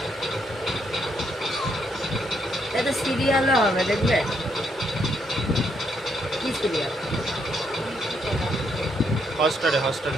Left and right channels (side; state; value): both; normal; correlation 0.75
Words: এটা সিরিয়ালও হবে, দেখবে? কি সিরিয়াল? হটস্টারে